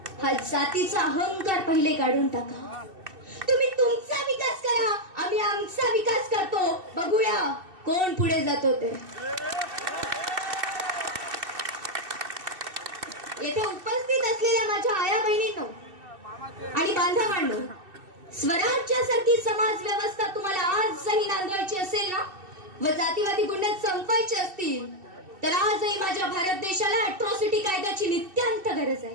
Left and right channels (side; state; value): left; late; 2.7 ms